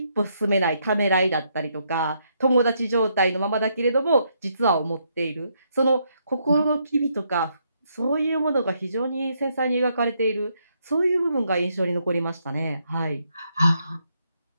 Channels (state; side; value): inverted; both; correlation -0.76